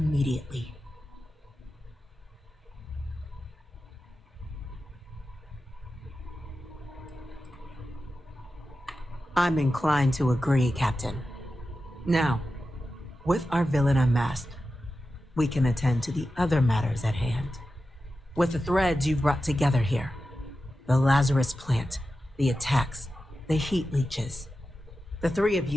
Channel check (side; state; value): both; normal; correlation 0.92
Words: I'm inclined to agree, Captain. Now, with our villain unmasked, we can attend to the other matters at hand. With the threads you've brought together here, the Lazarus plant, the attacks, the heat leeches, the 3 of